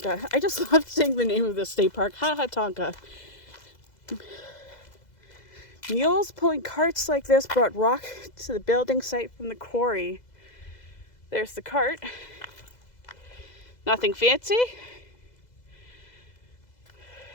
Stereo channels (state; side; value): late; right; 2.0 ms